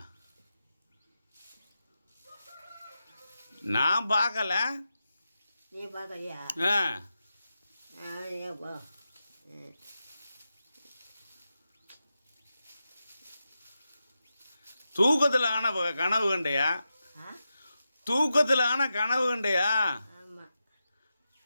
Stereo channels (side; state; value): both; inverted; correlation -0.90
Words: நான் பார்க்கல. நீ பார்க்கலையா? ஆ, ஏப்பா தூக்கத்தில் ஆன கனவு கண்டையா? தூக்கத்தில் ஆன கனவு கண்டையா? ஆமாம்.